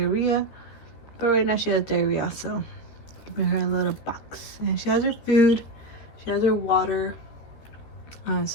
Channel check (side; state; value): right; late; 13 ms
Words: But right now she has diarrhea, so keeping her in a little box. And she has her food. She has her water